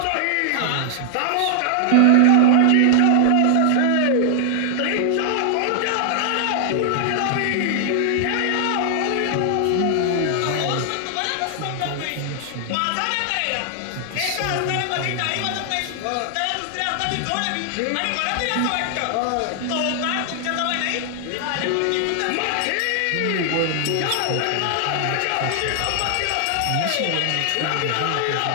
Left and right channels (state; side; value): different; both; correlation 0.00